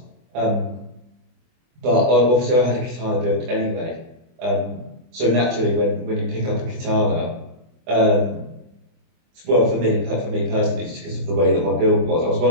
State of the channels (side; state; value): left; late; 24 ms